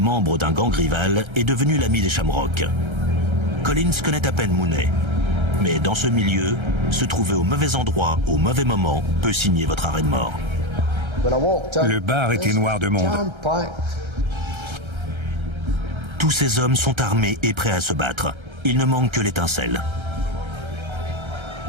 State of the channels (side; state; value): left; late; 1.3 ms